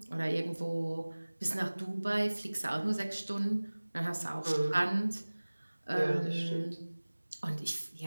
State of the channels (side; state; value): both; inverted; correlation -1.00